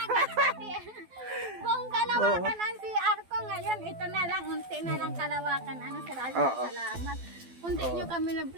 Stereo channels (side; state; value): left; late; 12 ms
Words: Buong kalawakan ang CR ko ngayon. Ito na lang, unti na lang kalawakan. Ano Sir Alvin, Oo. salamat. Unti nyo kami na